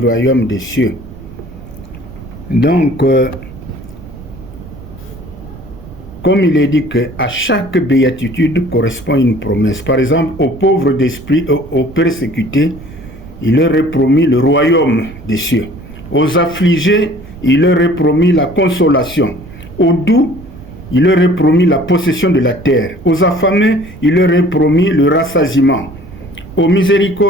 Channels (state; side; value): noise; right; rumble, 17 dB below the sound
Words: royaume des cieux. Donc, comme il est dit qu'à chaque béatitude correspond une promesse. Par exemple, aux pauvres d'esprit, aux persécutés, il leur est promis le royaume des cieux. Aux affligés, il leur est promis la consolation. Aux doux, il leur est promis la possession de la terre. Aux affamés, il leur est promis le rassasiement. Aux